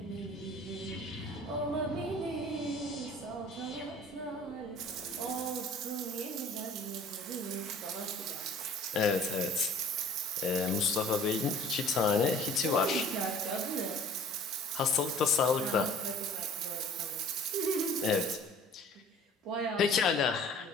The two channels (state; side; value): normal; both; correlation 0.48